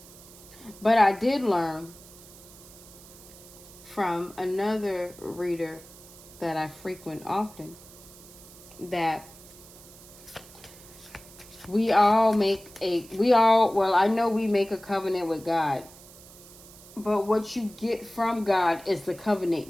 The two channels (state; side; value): noise; right; hiss, 20 dB below the sound